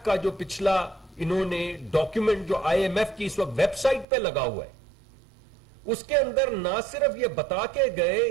کا جو پچھلا انہوں نے ڈاکیومنٹ جو آئی ایم ایف کی اس وقت ویب سائٹ پہ لگا ہوا ہے، اس کے اندر نہ صرف یہ بتا کے گئے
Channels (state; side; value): drops out; left; at 4.0 s